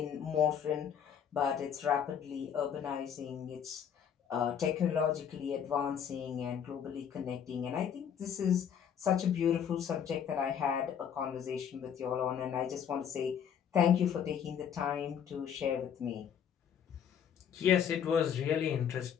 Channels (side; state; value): right; quieter; 8.3 dB